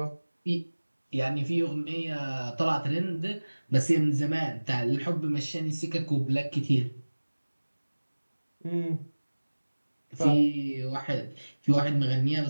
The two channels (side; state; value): both; inverted; correlation -1.00